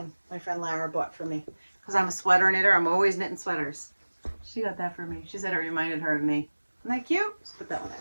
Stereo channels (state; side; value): inverted; both; correlation -1.00